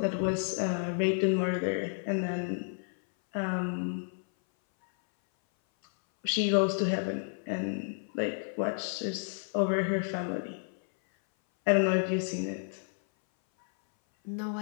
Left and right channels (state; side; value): silent; right; 57 dB below the other